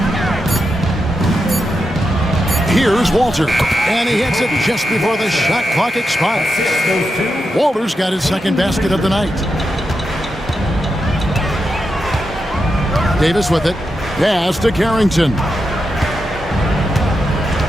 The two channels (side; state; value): both; normal; correlation 0.86